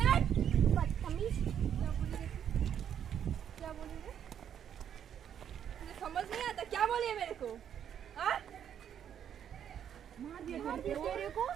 बदतमीज, क्या बोली रे? मुझे समझ नहीं आता, क्या बोली है मेरे को? हाँ? मार दिया तेरे को?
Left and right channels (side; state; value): left; quieter; 9.1 dB